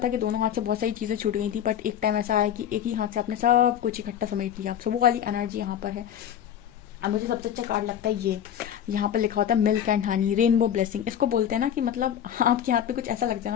कि दोनों हाथ से बहुत सारी चीज़ें छूट गई थी, बट एक टाइम ऐसा आया कि एक ही हाथ से आपने सब कुछ इकट्ठा समेट लिया। सो वो वाली एनर्जी यहाँ पर है। अब मुझे सबसे अच्छा कार्ड लगता है ये, यहाँ पर लिखा होता है milk and honey, rainbow blessing. इसको बोलते हैं ना कि मतलब आपके हाथ पे कुछ ऐसा लग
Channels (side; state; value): right; quieter; 9.7 dB